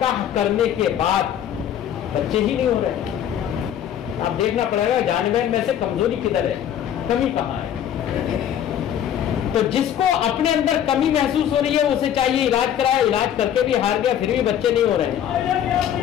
کرنے کے بعد بچے ہی نہیں ہو رہے، اب دیکھنا پڑے گا جانور میں سے کمزوری کدھر ہے، کمی کہاں ہے. تو جس کو اپنے اندر کمی محسوس ہو رہی ہے اسے چاہیے علاج کرائے، علاج کر کے بھی ہار گیا پھر بھی بچے نہیں ہو رہے،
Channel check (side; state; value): right; quieter; 10.0 dB